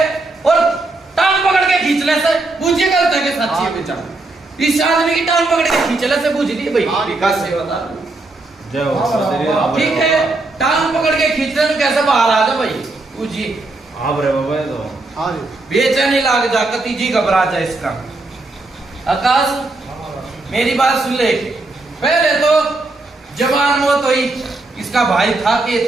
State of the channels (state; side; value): quieter; left; 3.1 dB